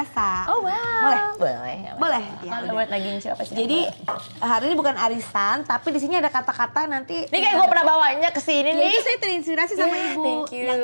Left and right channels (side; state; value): both; inverted; correlation -1.00